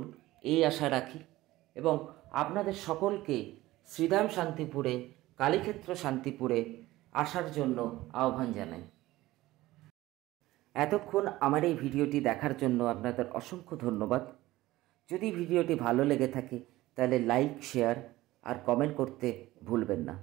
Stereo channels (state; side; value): quieter; left; 17.3 dB